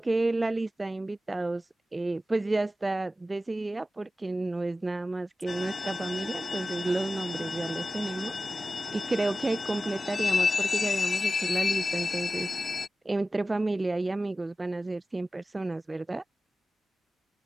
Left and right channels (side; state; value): both; normal; correlation 0.94